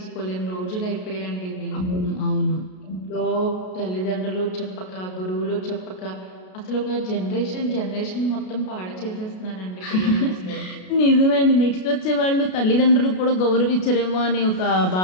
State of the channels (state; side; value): late; right; 33 ms